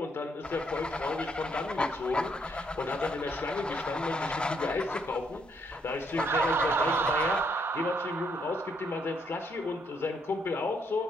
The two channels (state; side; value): normal; both; correlation 0.72